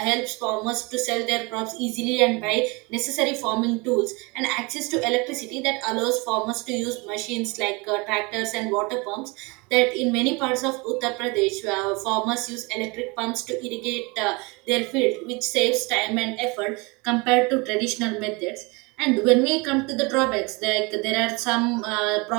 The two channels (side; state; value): left; quieter; 27.4 dB